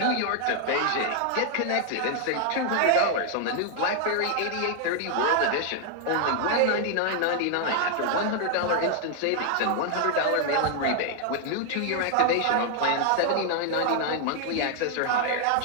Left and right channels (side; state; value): both; different; correlation 0.00